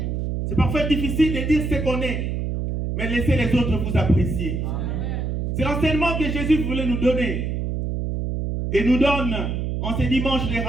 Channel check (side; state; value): right; noise; hum, 2 dB below the sound